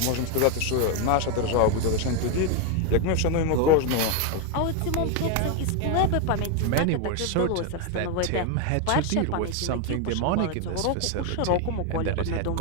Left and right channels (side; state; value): both; different; correlation 0.01